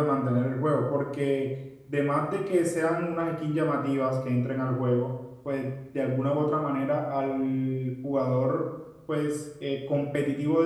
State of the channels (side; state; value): both; identical; correlation 1.00